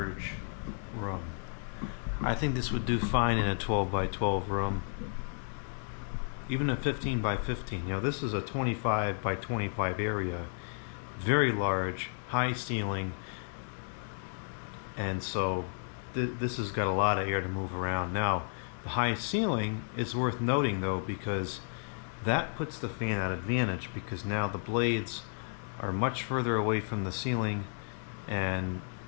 room. I think this would do fine in a 12 by 12 room. Even a 15 by 15. You know, this is a 25 by 25 area. Very large, high ceiling. And so this has got a lot of air to move around. Now, the high ceiling is worth noting though, because that puts the fan at advantage, because now the blades are much further away from the ceiling and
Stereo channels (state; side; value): silent; right; 56 dB below the other